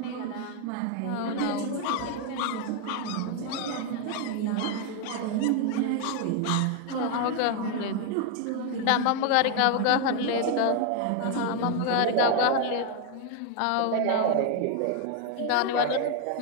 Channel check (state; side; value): different; both; correlation 0.00